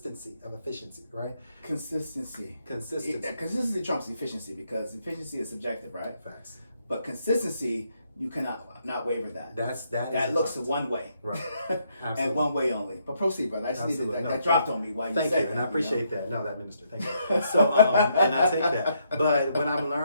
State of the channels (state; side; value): inverted; both; correlation -0.75